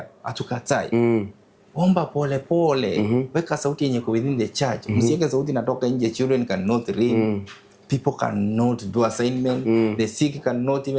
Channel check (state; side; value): identical; both; correlation 1.00